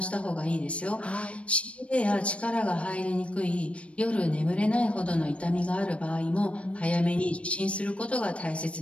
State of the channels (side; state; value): right; late; 0.062 ms